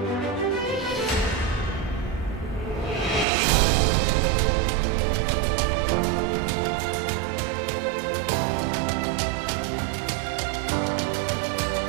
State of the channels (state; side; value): drops out; left; at 3.2 s